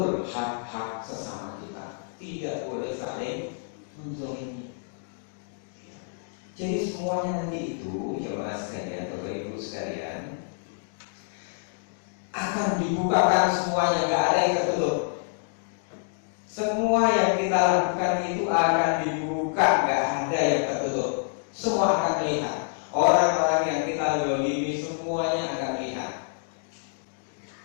hak-hak sesama kita, tidak boleh saling menzalimi. Jadi semuanya nanti itu jemaah sekalian, Bapak Ibu sekalian, akan dibukakan semuanya, nggak ada yang tertutup. Semua yang kita lakukan itu akan dibuka, nggak ada yang tertutup. Semua akan melihat. Orang-orang yang kita zalimi semuanya akan melihat.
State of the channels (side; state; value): right; silent; digital silence